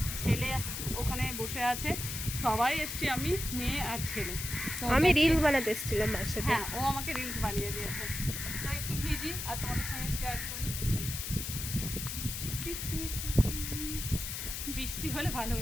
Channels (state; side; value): noise; left; hiss, 5 dB below the sound